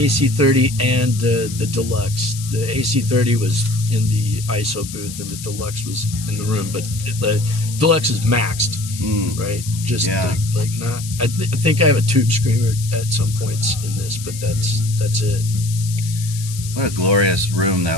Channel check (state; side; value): noise; left; hiss, 12 dB below the sound